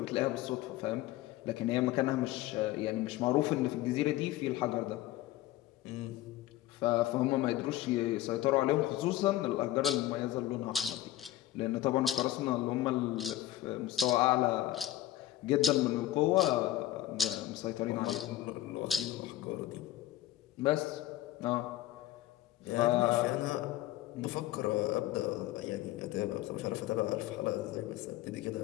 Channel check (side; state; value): right; quieter; 14.3 dB